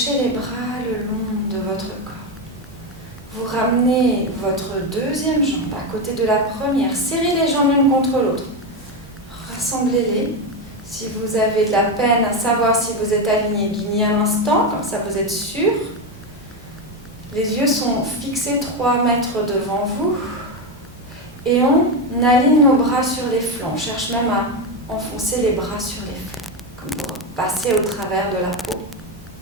les bras le long de votre corps. Vous ramenez votre deuxième jambe à côté de la première. Serrez les jambes l'une contre l'autre. Rassemblez-les. Si vous avez de la peine à savoir si vous êtes aligné, guignez un instant, comme ça vous êtes sûr. Les yeux sont fixés 3 mètres devant vous. Et on aligne nos bras sur les flancs. On cherche même à enfoncer les bras sur les flancs, comme pour passer au travers de la peau.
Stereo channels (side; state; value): both; normal; correlation 0.11